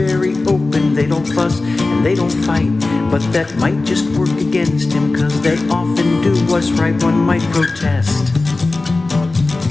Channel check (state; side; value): quieter; right; 3.3 dB